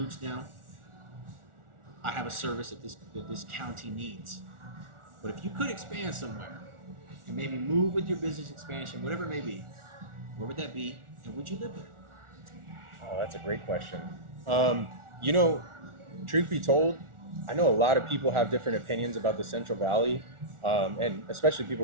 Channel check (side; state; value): left; late; 1.4 ms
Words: down. I have a service that this county needs. But if you could expand somewhere and maybe move with your business expansion, whatever it may be, where would that be? And would you live there? Oh, that's a great question. You know, truth be told, I know a lot of people have different opinions about the Central Valley, and especially